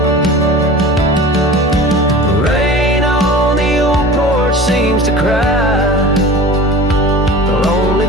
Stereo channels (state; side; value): normal; both; correlation 0.37